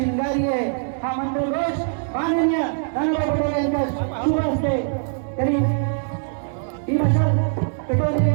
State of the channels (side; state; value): left; silent; digital silence